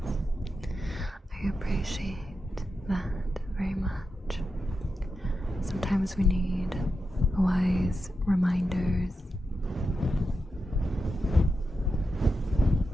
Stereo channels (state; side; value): normal; both; correlation 0.88